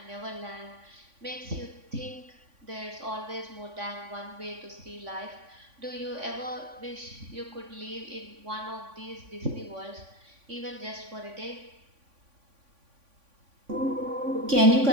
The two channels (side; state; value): left; late; 3.5 ms